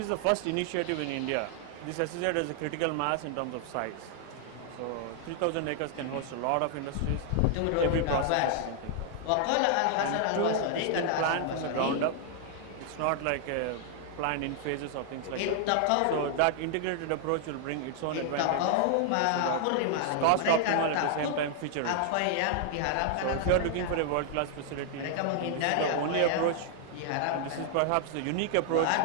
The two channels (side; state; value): both; different; correlation 0.00